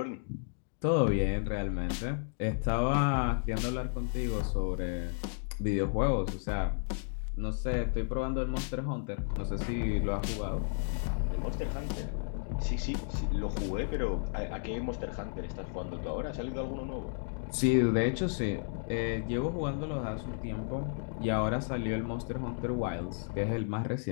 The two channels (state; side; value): silent; right; digital silence